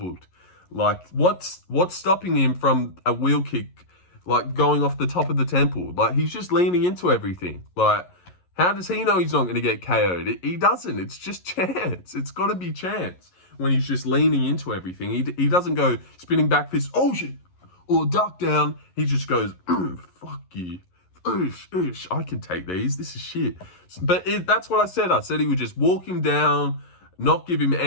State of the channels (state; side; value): late; right; 11 ms